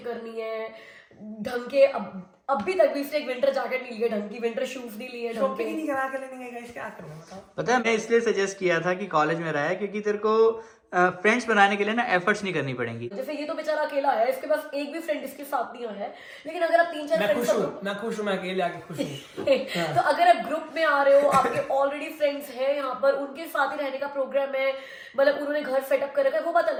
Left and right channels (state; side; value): identical; both; correlation 1.00